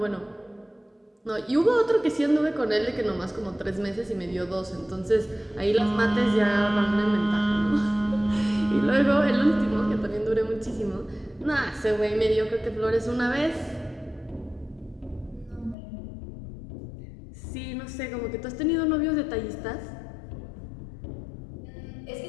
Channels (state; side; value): drops out; right; at 15.8 s